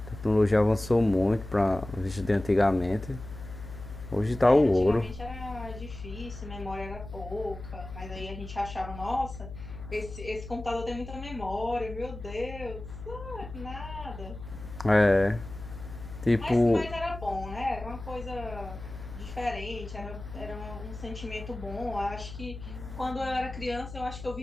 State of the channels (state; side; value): noise; left; hum, 12 dB below the sound